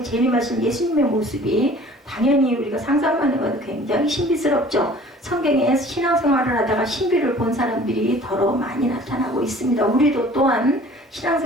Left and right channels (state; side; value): normal; both; correlation 0.49